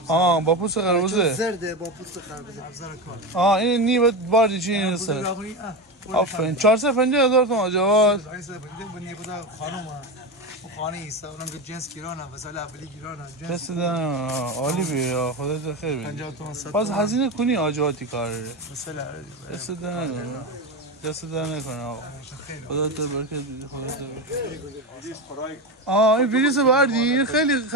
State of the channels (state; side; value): normal; both; correlation 0.19